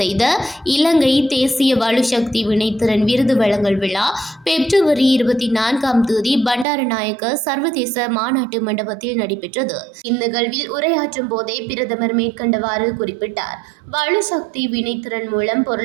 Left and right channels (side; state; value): left; drops out; at 6.7 s